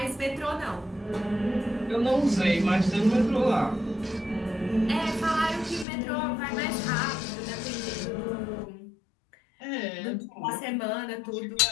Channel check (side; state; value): right; drops out; at 5.9 s